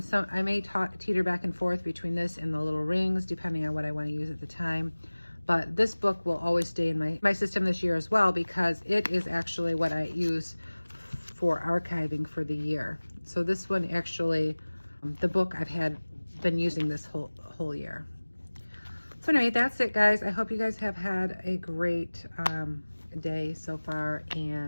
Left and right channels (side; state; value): both; inverted; correlation -1.00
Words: may teeter back and forth between this and the little rings, depending on what I want to use at the time. But this book will always stay in my system this year as well, because it is actually what I use for archiving for the year. So this one actually, the book I've been using this whole year. So anyway, that's it, guys. I hope you guys have had a great day so far,